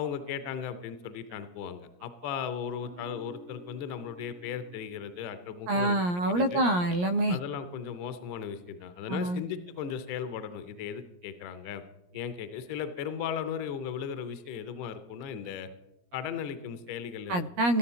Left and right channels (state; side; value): late; left; 17 ms